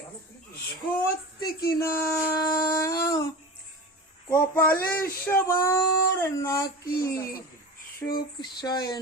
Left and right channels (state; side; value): normal; both; correlation 0.30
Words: সত্যি কিনা। কপালে সবার নাকি সুখ সয়